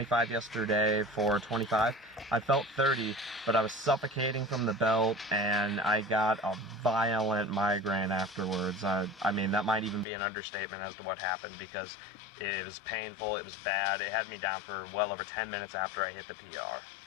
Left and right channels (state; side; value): drops out; right; at 10.1 s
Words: yesterday for 25. I felt 30, but I was suffocating from the belt, and I got a violent migraine afterwards. I mean, that might even be an understatement as to what happened, because it was painful, it was bad. It had me down for well over 10 minutes after I hit the PR.